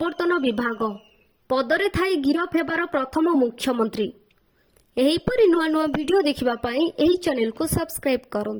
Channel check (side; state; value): both; identical; correlation 1.00